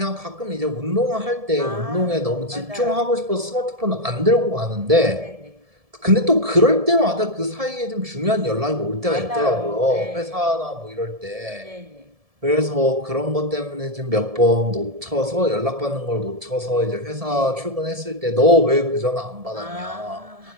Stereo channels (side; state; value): left; late; 1.7 ms